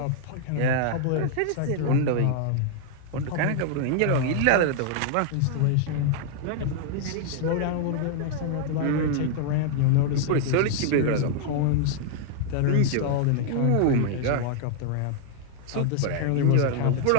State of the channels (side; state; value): both; different; correlation -0.01